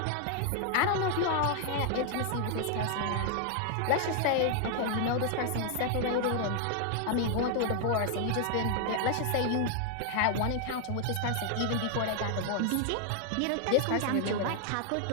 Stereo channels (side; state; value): both; different; correlation 0.00